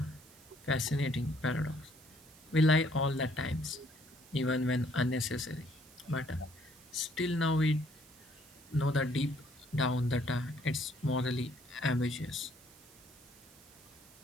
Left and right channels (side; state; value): right; noise; hiss, 24 dB below the sound